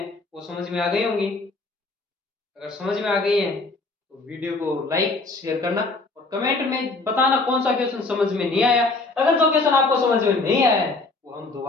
वो समझ में आ गई होंगी। अगर समझ में आ गई है तो वीडियो को लाइक शेयर करना और कमेंट में बताना कौन सा क्वेश्चन समझ में नहीं आया। अगर जो क्वेश्चन आपको समझ में नहीं आया है वो हम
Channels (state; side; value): quieter; right; 3.5 dB